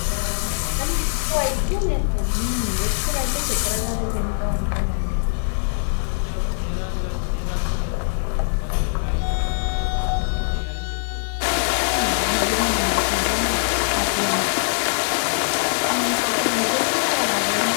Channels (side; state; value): right; silent; digital silence